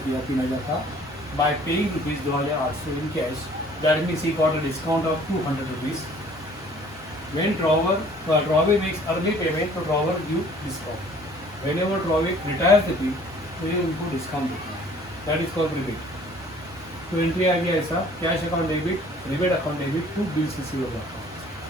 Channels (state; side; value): normal; both; correlation 0.54